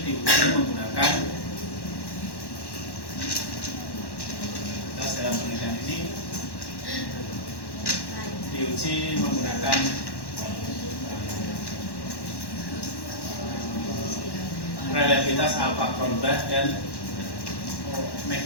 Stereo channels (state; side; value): late; right; 1.1 ms